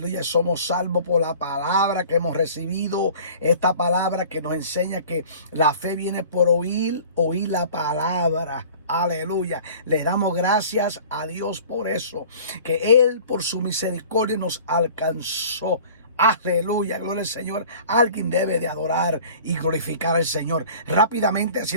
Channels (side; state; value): both; inverted; correlation -0.45